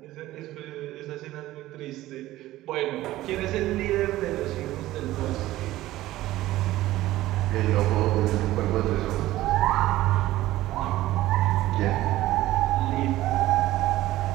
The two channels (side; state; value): left; quieter; 16.0 dB